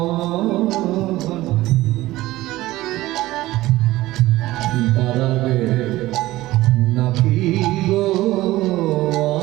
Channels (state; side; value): quieter; left; 17.2 dB